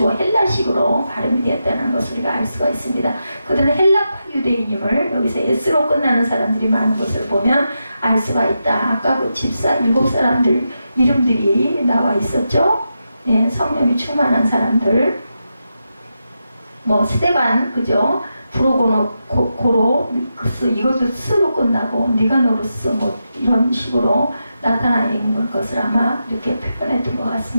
헬라식으로 발음이 되었다는 것을 우리가 알 수가 있습니다. 그들은 헬라파 유대인임을 여기서 S로 끝나는 사람들이 많은 것을 보면 알 수가 있다. 아까 그 집사 7사람들 이름들이 나와 있었죠. 성령이 충만한 사람들, 스데반, 그죠? 브로고노코로스, 이것도 스로 끝나고 니가노루스 이런 식으로 나타나 있는 것을 아마 이렇게 표현했던 것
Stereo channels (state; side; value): inverted; both; correlation -0.87